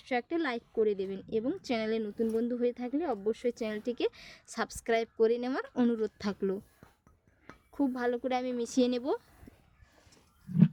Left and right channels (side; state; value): both; identical; correlation 1.00